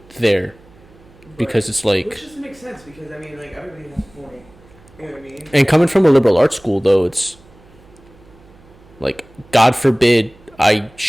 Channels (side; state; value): right; noise; hum, 27 dB below the sound